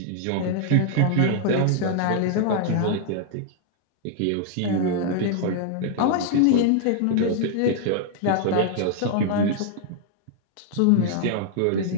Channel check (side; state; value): both; different; correlation 0.00